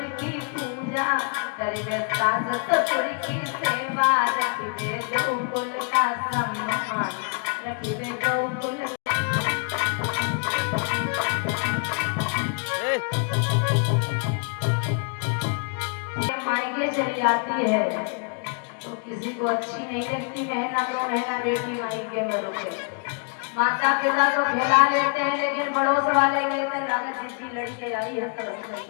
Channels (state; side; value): quieter; right; 38.1 dB